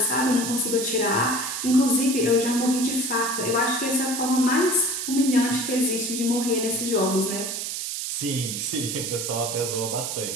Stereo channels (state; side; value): noise; right; hiss, 4 dB below the sound